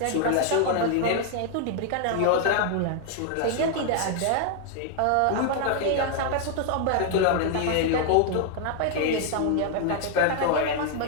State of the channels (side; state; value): both; different; correlation 0.00